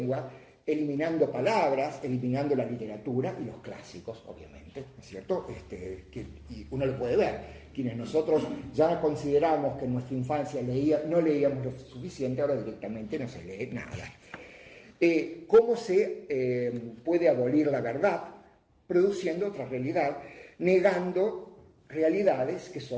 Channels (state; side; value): identical; both; correlation 1.00